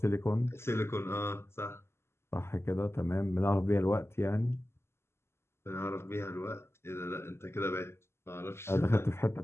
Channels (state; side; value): late; right; 0.12 ms